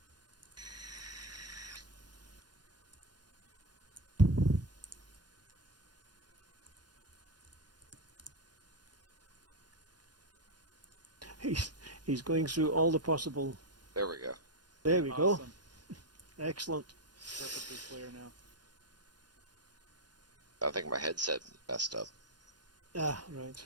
He's going through all the possible. There we go. There we go. Awesome. Excellent. Perfectly clear now. I think my headset messed up. Ah, right.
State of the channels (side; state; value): left; late; 0.70 ms